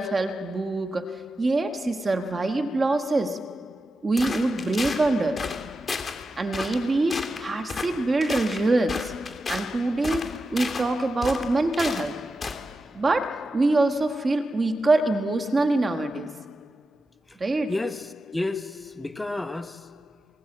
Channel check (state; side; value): normal; both; correlation 0.91